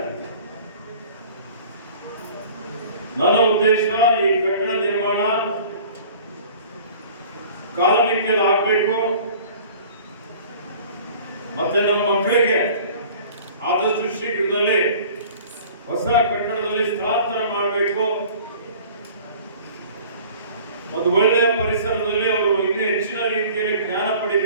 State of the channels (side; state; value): both; inverted; correlation -0.47